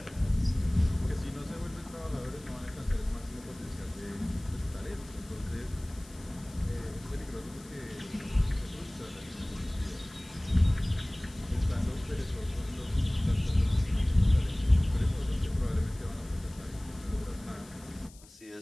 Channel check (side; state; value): left; noise; hiss, 23 dB below the sound